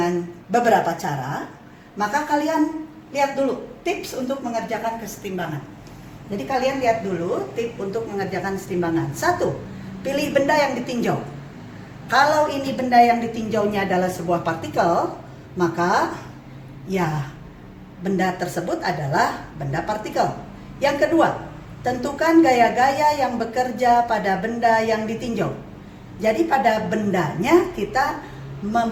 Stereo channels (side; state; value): both; identical; correlation 1.00